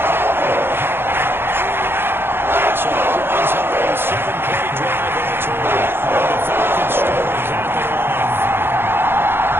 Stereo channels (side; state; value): left; late; 0.11 ms